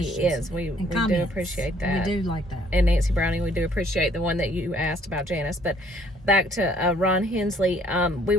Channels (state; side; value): normal; both; correlation 0.62